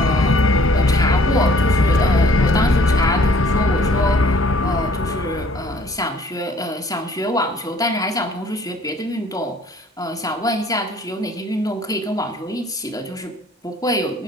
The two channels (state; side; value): normal; both; correlation 0.57